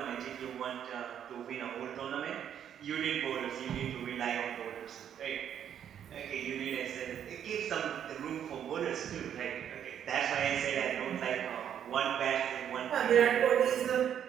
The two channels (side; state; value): left; quieter; 9.3 dB